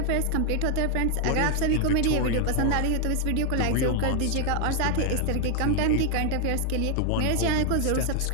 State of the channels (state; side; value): different; both; correlation 0.00